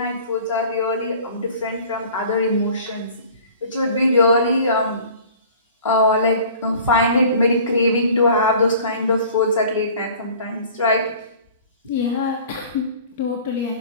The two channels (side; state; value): both; inverted; correlation -0.47